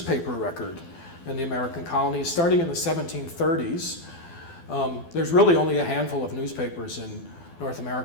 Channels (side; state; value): right; late; 12 ms